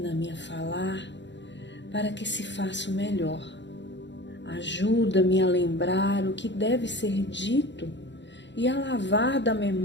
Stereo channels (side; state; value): right; late; 0.52 ms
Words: a falar para que se faça o melhor. Ajuda-me a lembrar o que deve ser dito e a lavar da